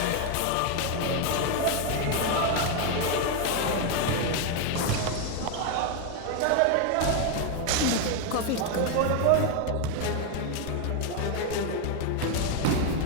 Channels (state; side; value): different; both; correlation 0.01